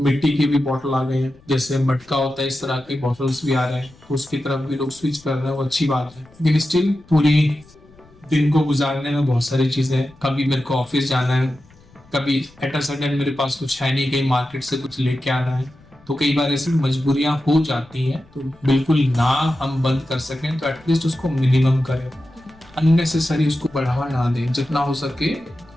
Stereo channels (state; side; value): noise; left; rumble, 27 dB below the sound